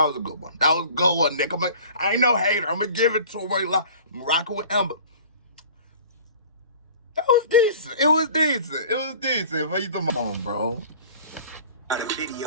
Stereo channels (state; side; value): inverted; both; correlation -0.45